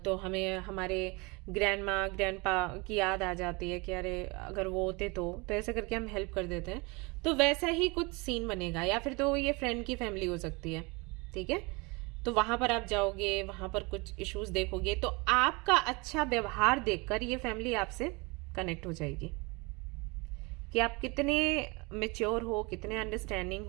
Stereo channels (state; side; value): quieter; left; 27.4 dB